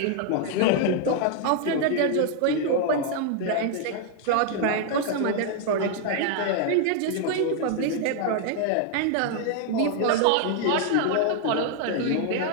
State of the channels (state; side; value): different; both; correlation 0.00